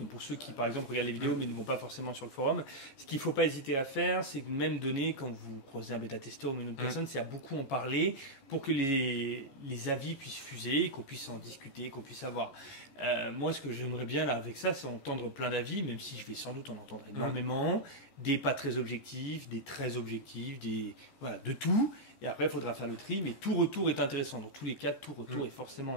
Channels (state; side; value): late; right; 15 ms